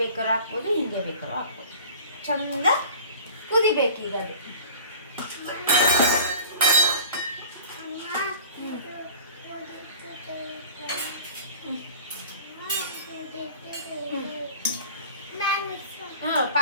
ಬೇಕಾದ್ರೂ ಹಾಕ್ಬೋದು, ಹಿಂಗೆ ಬೇಕಾದ್ರೂ ಹಾಕ್ಬೋದು. ಚಂದ ಕುದಿಬೇಕು ಈಗ ಅದು.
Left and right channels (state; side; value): inverted; both; correlation -0.43